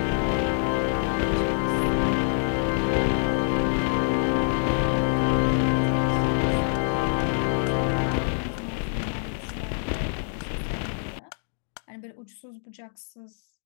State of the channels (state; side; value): silent; right; digital silence